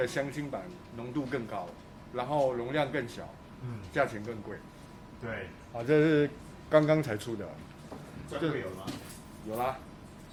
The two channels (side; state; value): both; identical; correlation 1.00